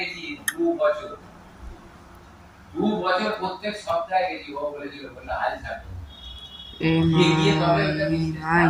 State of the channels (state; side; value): identical; both; correlation 1.00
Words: 2 বছর প্রত্যেক সপ্তাহে গেছি। ও বলেছিল বলে হাল ছাড়বে।